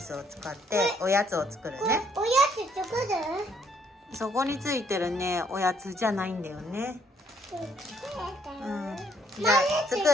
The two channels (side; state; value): both; normal; correlation 0.67